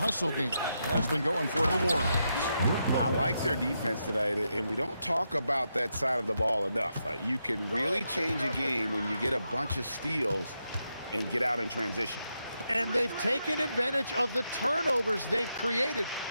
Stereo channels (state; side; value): inverted; both; correlation -0.84